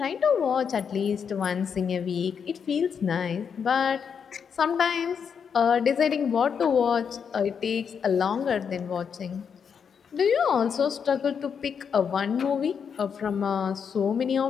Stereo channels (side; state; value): right; quieter; 6.9 dB